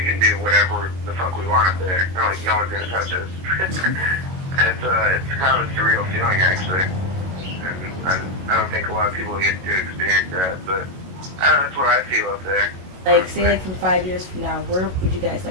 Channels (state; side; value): late; left; 22 ms